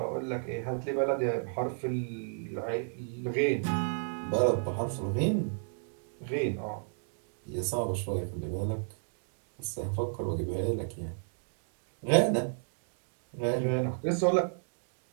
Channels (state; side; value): silent; left; digital silence